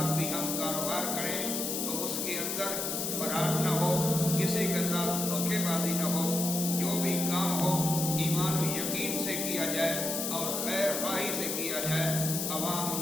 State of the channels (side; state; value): left; noise; hiss, 2 dB below the sound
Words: بھی ہم کاروبار کریں تو اس کے اندر فراڈ نہ ہو، کسی کے ساتھ دھوکے بازی نہ ہو. جو بھی کام ہو ایمان و یقین سے کیا جائے اور خیر خواہی سے کیا جائے. عوام